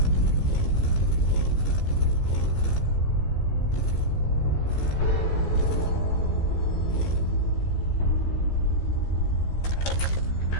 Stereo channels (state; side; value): late; right; 15 ms